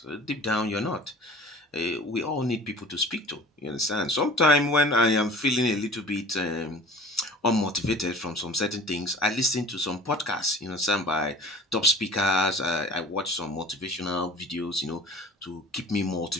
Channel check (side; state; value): both; normal; correlation 0.44